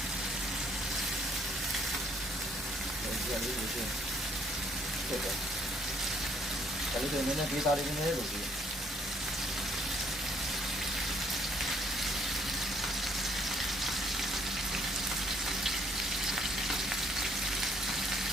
အလေးကိုရှင်းဖြစ်တယ်ဒါလေးတွေနည်းနည်းဒေတာလေးနည်းနည်းလို့ဒီ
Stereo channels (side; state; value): both; normal; correlation 0.65